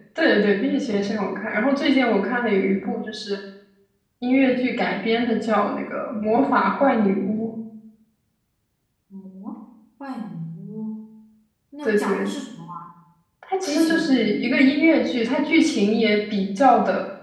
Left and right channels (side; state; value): both; identical; correlation 1.00